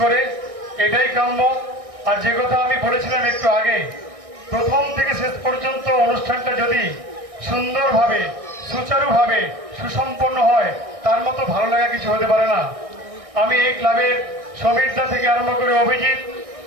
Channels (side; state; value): left; late; 1.6 ms